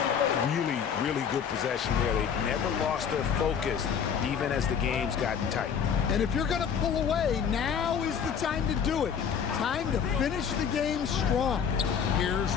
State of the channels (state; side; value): quieter; right; 7.4 dB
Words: Really, really good possession there. They've never lost their focus, even as the game's gotten tight. And if you're going to pull away, now is the time to do it. Time to finish the game strong. Here's